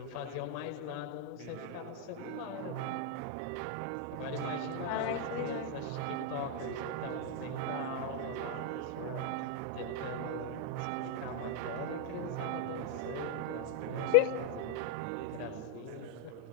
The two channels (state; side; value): different; both; correlation 0.00